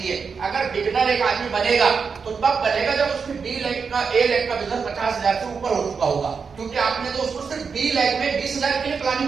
अगर बिगनर एक आदमी बनेगा तो तब बनेगा जब उसकी बी लैख का ए लैख का बिजनेस 50,000 से ऊपर हो चुका होगा, क्योंकि आपने तो उसको सिर्फ बी लैख में 20,000 के लिए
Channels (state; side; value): quieter; left; 5.6 dB